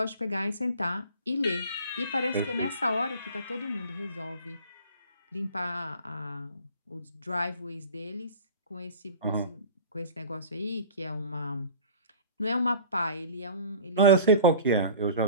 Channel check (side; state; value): both; inverted; correlation -0.41